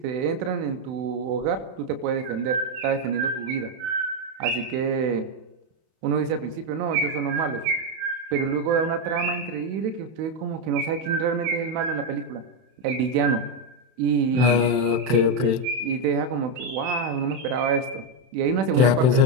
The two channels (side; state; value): left; late; 31 ms